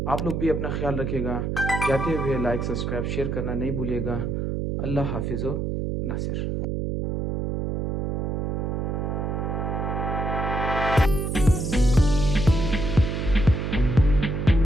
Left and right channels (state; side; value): noise; right; hum, 1 dB below the sound